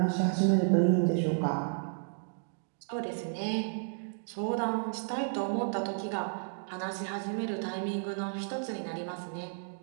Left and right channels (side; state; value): left; silent; digital silence